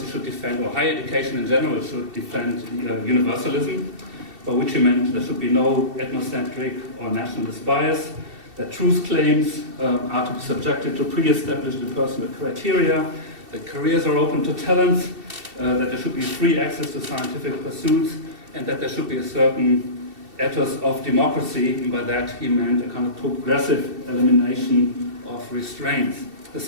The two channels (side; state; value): left; late; 2.7 ms